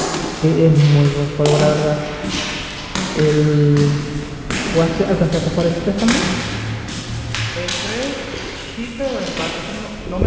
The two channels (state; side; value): identical; both; correlation 1.00